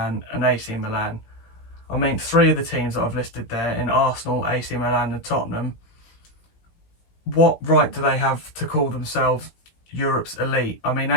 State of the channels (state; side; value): late; right; 17 ms